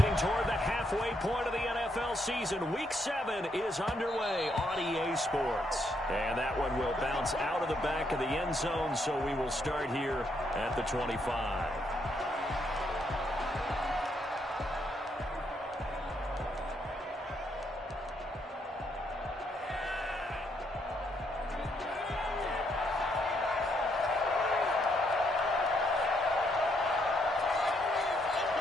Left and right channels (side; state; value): both; normal; correlation 0.75